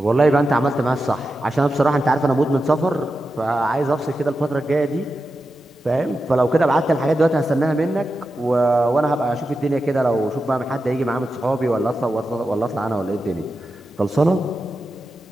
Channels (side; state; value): both; normal; correlation 0.90